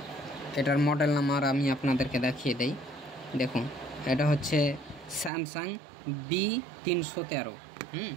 এটার মডেল নাম্বার আমি আপনাদেরকে দেখিয়ে দেই। দেখুন এটা হচ্ছে স্যামসাং B313।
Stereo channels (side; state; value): left; drops out; at 5.3 s